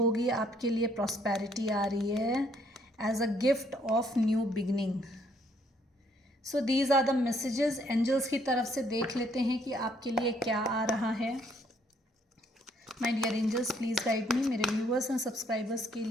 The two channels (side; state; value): both; normal; correlation 0.67